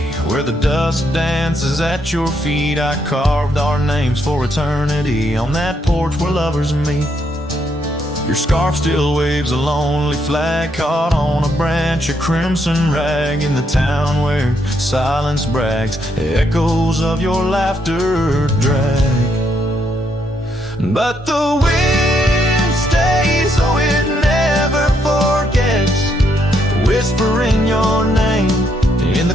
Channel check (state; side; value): normal; both; correlation 0.75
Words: where the dust dances at your feet, I carved our names for eternity on that porch where lovers meet. Your scarf still waves a lonely flag caught on a branch, a crimson rag in the town where silence brags. Echoes of your laughter drag, but the wind stays, oh it never forgets, whispering your name in